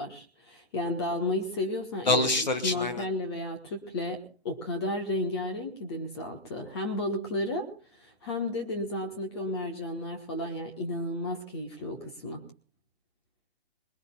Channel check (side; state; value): both; normal; correlation -0.05